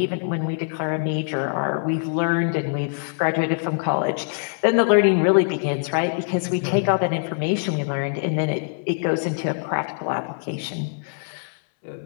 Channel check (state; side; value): silent; right; 63 dB below the other